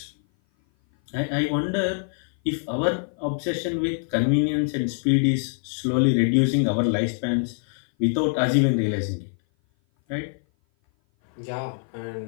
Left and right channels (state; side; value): silent; right; 57 dB below the other